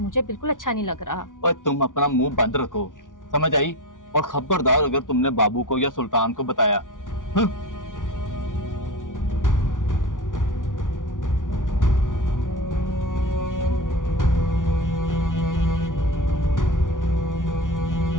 बिल्कुल अच्छा नहीं लग रहा। और तुम अपना मुंह बंद रखो, समझ आई? और खबरदार अगर तुमने बाबू को या सुल्तान को बताया।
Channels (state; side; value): late; right; 0.88 ms